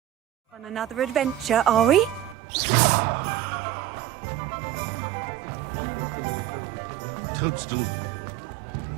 On another adventure, are we?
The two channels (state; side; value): drops out; left; at 2.4 s